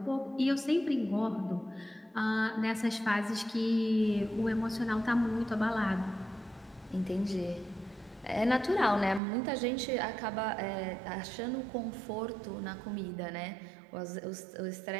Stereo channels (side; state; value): left; drops out; at 9.2 s